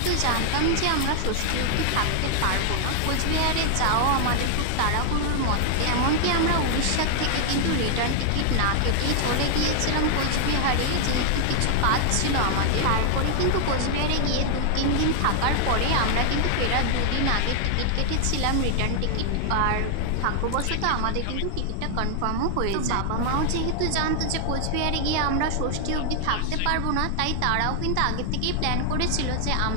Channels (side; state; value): both; different; correlation 0.00